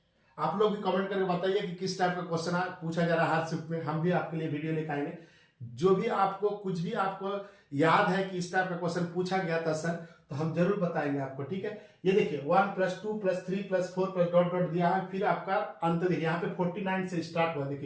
आप लोग भी कमेंट करके बताइए कि किस टाइप का क्वेश्चन पूछा जा रहा है हर शिफ्ट में, हम भी आपके लिए वीडियो लेकर आएंगे। जो भी आपको कुछ भी आपको याद है कि इस टाइप का क्वेश्चन पूछा गया था सर, तो हम जरूर बताएंगे आपको। ठीक है, ये देखिए 1 + 2 + 3 + 4 + डॉट डॉट दिया है, फिर आपका अंत देखिए यहाँ पे 49 से स्टार्ट हुआ,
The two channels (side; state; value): both; identical; correlation 1.00